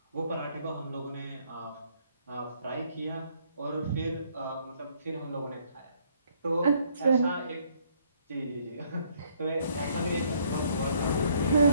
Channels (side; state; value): both; inverted; correlation -0.66